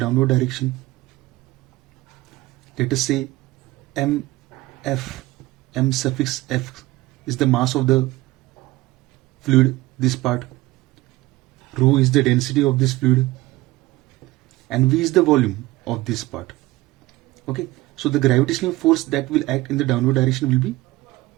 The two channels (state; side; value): quieter; left; 18.9 dB